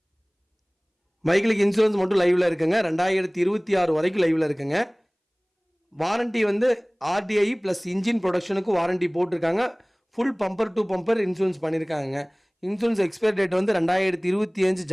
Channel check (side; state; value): both; identical; correlation 1.00